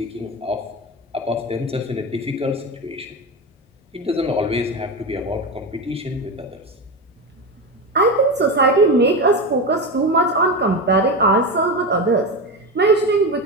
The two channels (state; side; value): normal; both; correlation 0.19